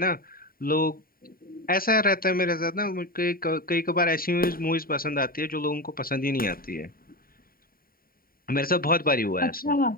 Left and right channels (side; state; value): right; late; 0.43 ms